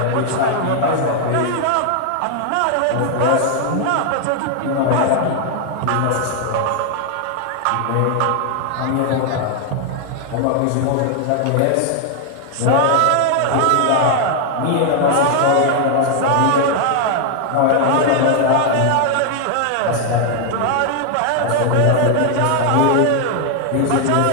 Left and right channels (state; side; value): different; both; correlation 0.00